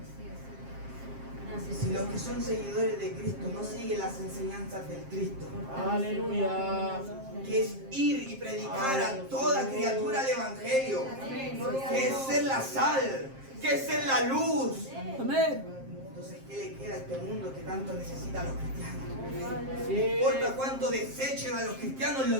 si los que son seguidores de Cristo no siguen las enseñanzas del Cristo, Aleluya. que es ir y predicar a toda criatura el Evangelio, que es ser la sal, que es ser la luz. Amén. Entonces, ¿qué le queda a este mundo que tanto necesita a los cristianos? No Sí. importa cuánto desechen a los cristianos,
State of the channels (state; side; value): late; left; 7.5 ms